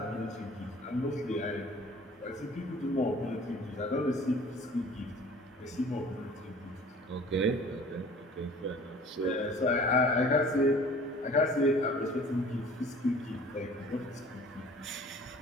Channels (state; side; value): normal; both; correlation 0.48